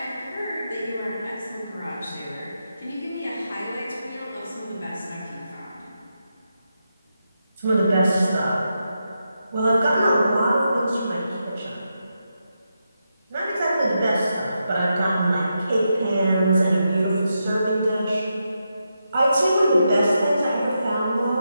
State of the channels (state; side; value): inverted; both; correlation -0.85